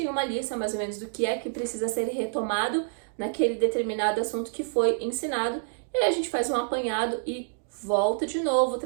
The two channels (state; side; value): silent; left; digital silence